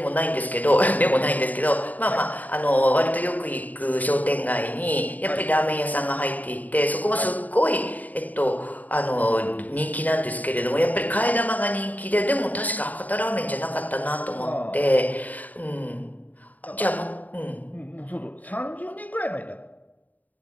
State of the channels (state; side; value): late; right; 0.077 ms